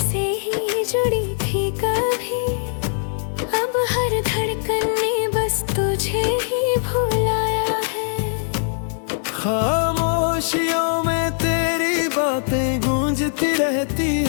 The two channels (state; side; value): silent; right; digital silence